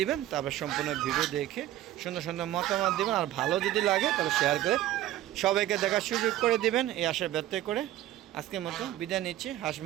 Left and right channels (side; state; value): left; quieter; 13.7 dB